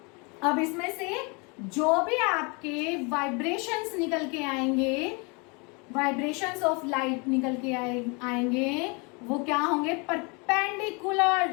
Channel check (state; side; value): quieter; right; 30.8 dB